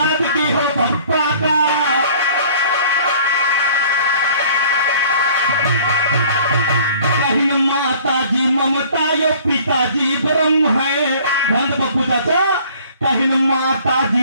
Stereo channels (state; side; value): inverted; both; correlation -0.52